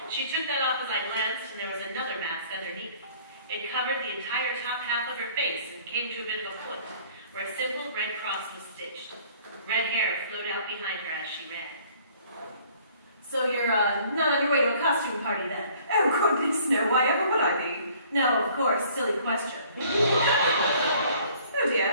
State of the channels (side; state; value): both; inverted; correlation -0.56